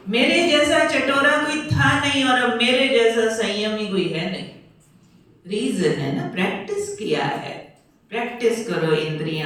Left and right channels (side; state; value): both; identical; correlation 1.00